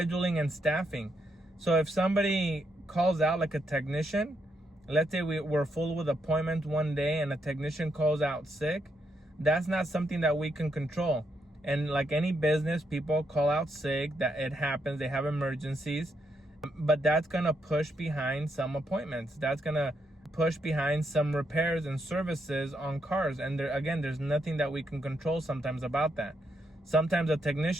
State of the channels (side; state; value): both; normal; correlation 0.79